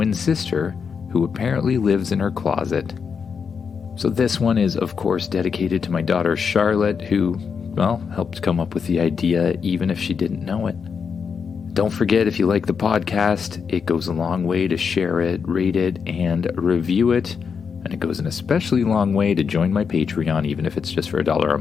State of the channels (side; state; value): right; quieter; 6.1 dB